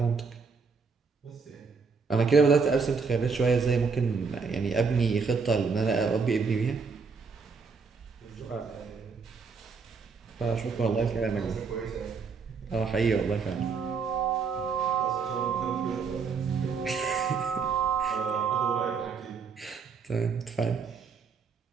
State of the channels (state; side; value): quieter; left; 5.2 dB